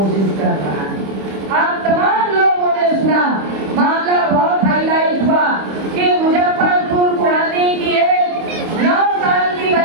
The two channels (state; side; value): late; left; 25 ms